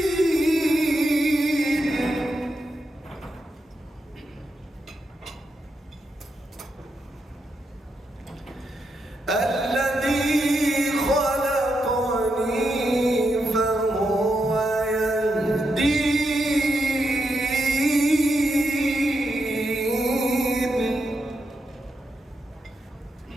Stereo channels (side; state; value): both; normal; correlation 0.84